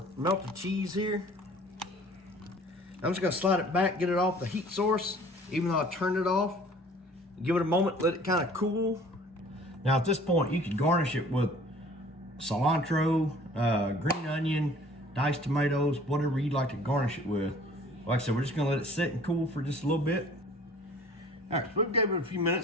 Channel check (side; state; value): both; normal; correlation 0.51